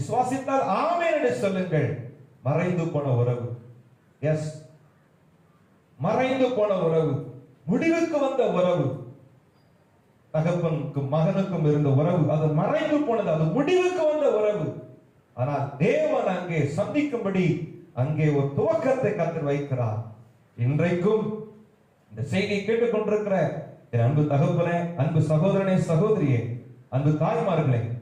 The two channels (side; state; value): both; identical; correlation 1.00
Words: ஆமென் என்று சொல்லுங்கள். மறைந்து போன உறவு, எஸ், மறைந்து போன உறவு, முடிவுக்கு வந்த உறவு, தகப்பனுக்கும் மகனுக்கும் இருந்த உறவு அது மறைந்து போனது, அது முடிவுக்கு வந்த உறவு. ஆனால் தேவன் அங்கே சந்திக்கும்படி அங்கே ஒரு துவக்கத்தை கர்த்தர் வைக்கிறார். இன்றைக்கும் இந்த செய்தியை கேட்டுக்கொண்டிருக்கிற என் அன்பு தகப்பனே, அன்பு சகோதரனே, சகோதரியே, அன்பு தாய்மார்களே,